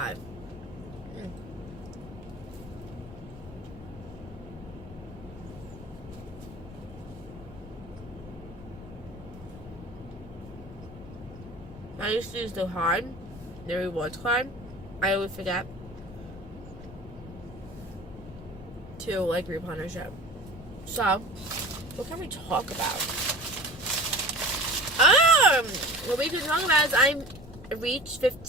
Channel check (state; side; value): noise; left; rumble, 15 dB below the sound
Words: I used to use the rewards card. I always forget to like replenisher. So, what can we talk about? What we can talk about is I reached